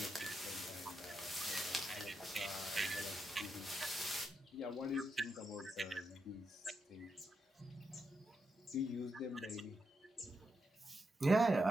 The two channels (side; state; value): both; normal; correlation 0.84